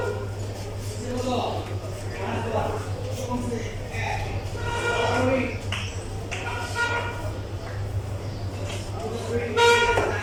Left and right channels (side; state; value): both; identical; correlation 1.00